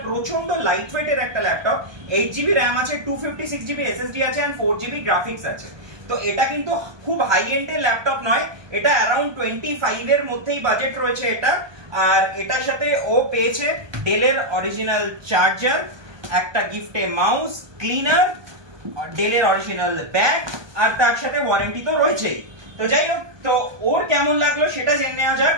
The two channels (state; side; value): late; left; 1.2 ms